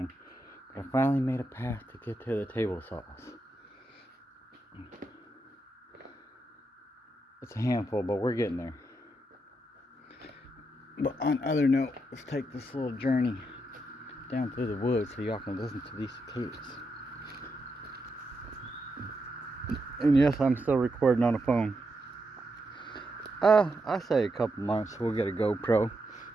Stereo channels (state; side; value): normal; both; correlation 0.83